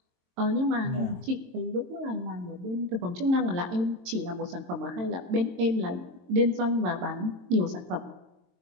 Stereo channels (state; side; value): late; left; 22 ms